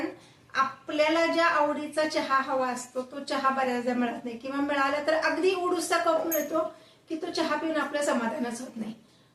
आपल्याला ज्या आवडीचा चहा हवा असतो तो चहा बऱ्याचदा मिळत नाही, किंवा मिळाला तर अगदी उडूसा कप मिळतो की तो चहा पिऊन आपलं समाधानच होत नाही.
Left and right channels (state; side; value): identical; both; correlation 1.00